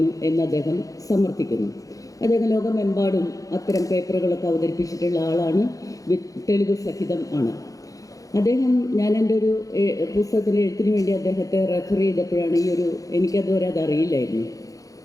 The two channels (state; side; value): late; right; 0.17 ms